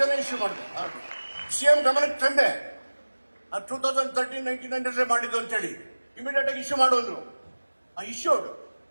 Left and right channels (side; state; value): both; inverted; correlation -1.00